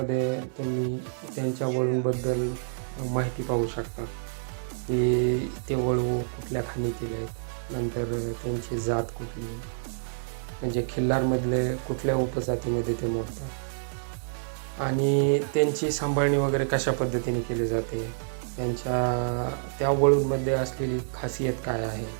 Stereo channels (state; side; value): silent; left; digital silence